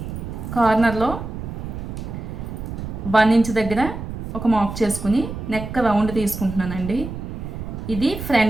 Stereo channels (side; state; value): right; noise; rumble, 7 dB below the sound